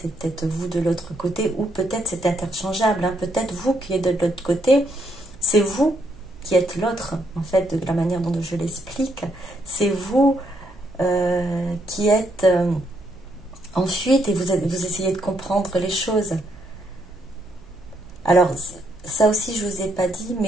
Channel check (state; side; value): noise; right; hum, 24 dB below the sound